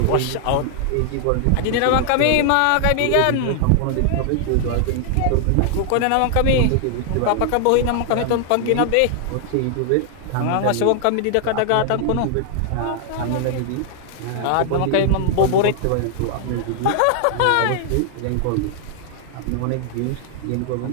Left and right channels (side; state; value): both; different; correlation 0.00